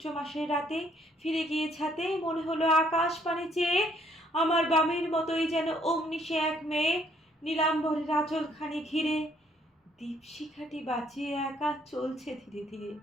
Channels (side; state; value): both; normal; correlation 0.66